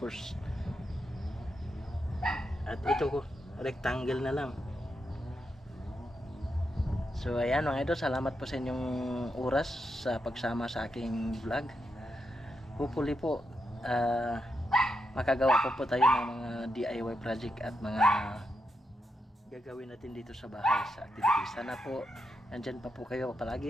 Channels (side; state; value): both; normal; correlation 0.84